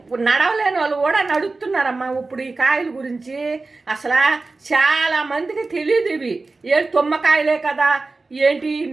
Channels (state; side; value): quieter; left; 3.6 dB